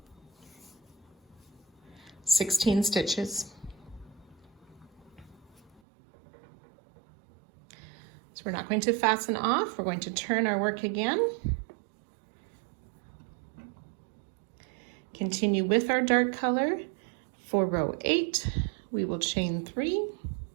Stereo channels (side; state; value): left; drops out; at 5.8 s